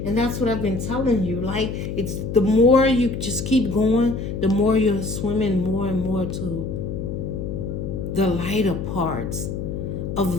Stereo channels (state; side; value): noise; left; hum, 5 dB below the sound